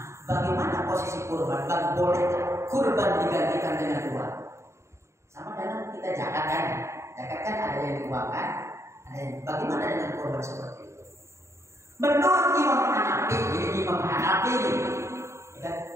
bagaimana posisi kurban? Boleh kurban digantikan dengan uang? Sama dengan kita zakat kan? Zakat kan ada yang diuangkan, ada yang bagaimana dengan kurban seperti itu? Menurut Imam Hanafi, jadi Imam Hanafi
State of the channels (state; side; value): late; left; 0.14 ms